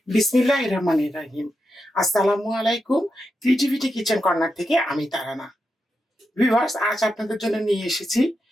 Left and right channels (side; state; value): both; normal; correlation 0.87